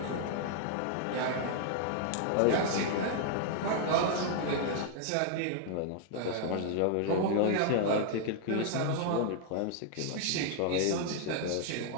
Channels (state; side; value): different; both; correlation 0.00